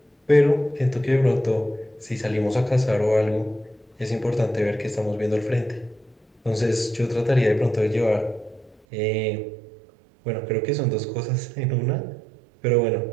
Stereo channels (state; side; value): drops out; left; at 8.8 s